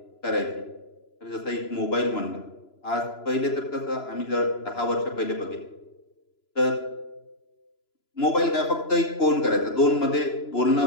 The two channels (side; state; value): right; late; 3.0 ms